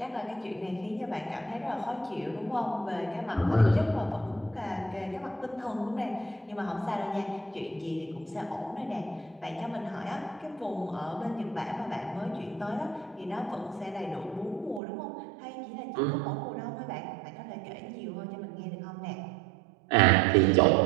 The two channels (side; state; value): left; drops out; at 14.8 s